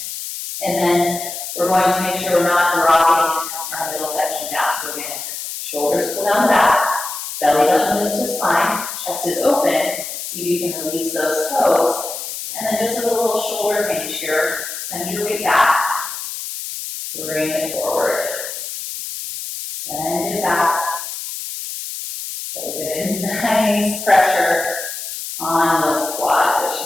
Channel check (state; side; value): noise; left; hiss, 7 dB below the sound